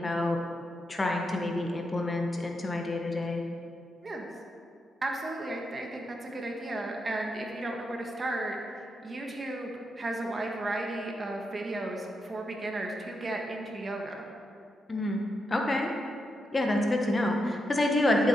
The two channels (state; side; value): normal; both; correlation 0.84